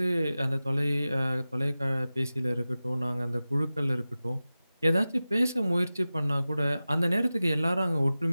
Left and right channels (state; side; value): inverted; both; correlation -0.96